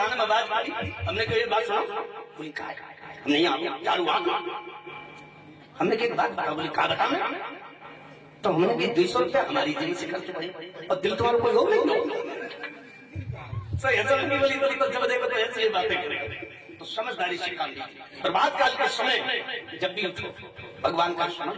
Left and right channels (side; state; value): both; identical; correlation 1.00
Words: में आवाज आई, हमने कही बात सुना। बोली कहा हमने यहाँ झाड़ू आ, हमने कही बात बता। बोली कहा बता। तो हमने कही 200 रुपया हमारी जेब से खर्च हुए और दिल तुम्हारा कोई हो नहीं। ऐसा नहीं बोली तो जब देखो तो ऐसी बातें करेगा तो समझदारी से काम लीजिए। प्रभात काल के समय जब भी उठो भगवान का स्मरण